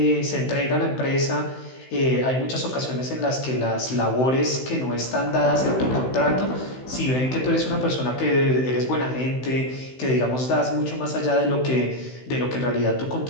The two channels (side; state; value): right; late; 16 ms